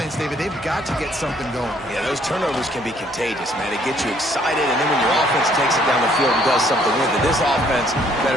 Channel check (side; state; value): right; noise; hum, 21 dB below the sound